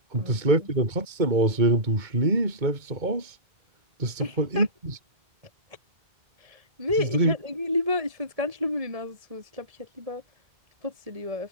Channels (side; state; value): left; late; 2.2 ms